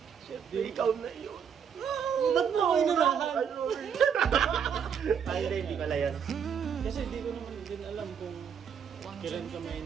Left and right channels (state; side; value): quieter; left; 7.5 dB